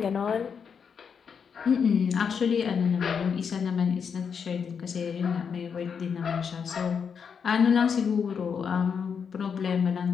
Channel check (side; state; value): right; quieter; 6.6 dB